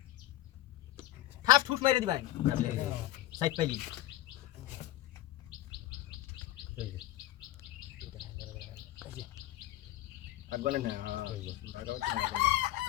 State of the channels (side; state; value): right; quieter; 14.6 dB